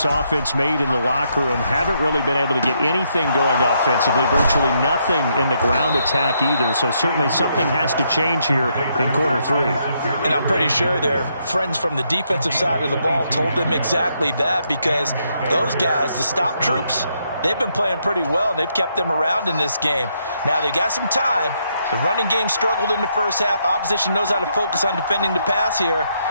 offense made in the locker room. Haven't really been able to get anything going offensively, virtually nothing in the ground attack either. So certainly something has to change here in quarter 3. And I'm pretty sure their friends from the defensive side of the ball told them exactly that, because those guys, the stop troops, they've been playing pretty well, and they've kept them around in this game. Now they've got some time. The running game struggled in the first half. Opposition knows how to focus on defending the pass here.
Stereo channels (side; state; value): both; inverted; correlation -0.76